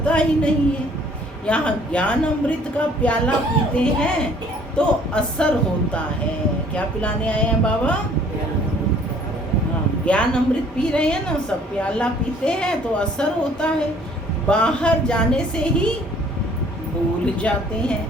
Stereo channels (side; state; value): both; normal; correlation 0.57